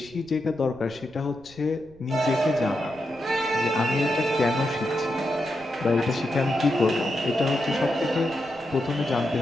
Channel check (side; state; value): right; noise; rumble, 26 dB below the sound